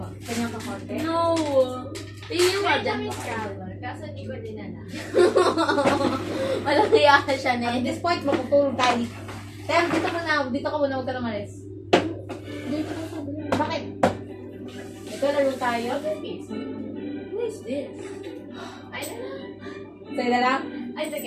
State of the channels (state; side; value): identical; both; correlation 1.00